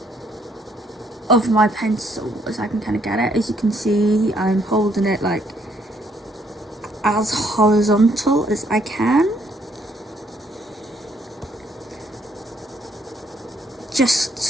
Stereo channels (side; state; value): both; normal; correlation 0.69